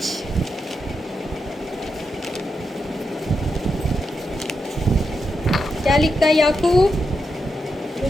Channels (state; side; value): normal; both; correlation 0.85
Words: क्या लिखता है याकूब?